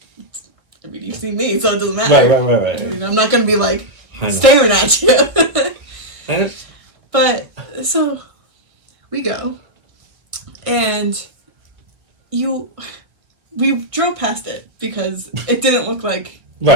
I mean, you see me, so it doesn't matter. Right. I mean, I'm not going to be, like, staring at you. But, so, we go. And we drove past it because it didn't look like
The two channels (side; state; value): left; late; 1.6 ms